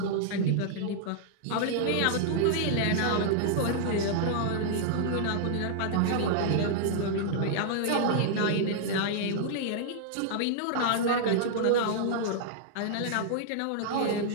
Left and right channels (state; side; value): different; both; correlation -0.01